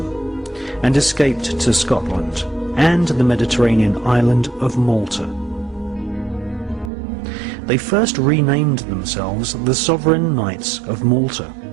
and escaped to Scotland and the Mediterranean island of Malta. They first renamed themselves the Sovereign Knights of Malta,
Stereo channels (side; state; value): left; drops out; at 6.9 s